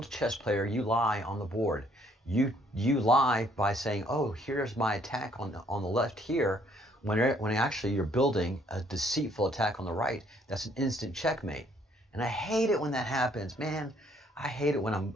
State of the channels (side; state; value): both; normal; correlation 0.65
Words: chess player, you lie on the board. You lie by saying, oh, here's my attack on the left here, when actually you're building a deceitful attack on the right. That's an instant checkmate. And I hate it when that happens. Man, I hate it when I'm